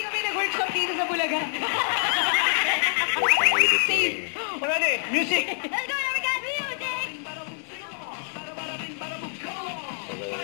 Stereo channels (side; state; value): right; silent; 61 dB below the other